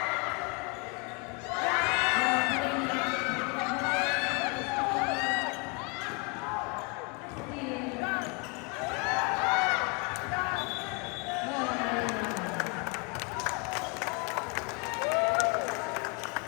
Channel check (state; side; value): quieter; right; 32.3 dB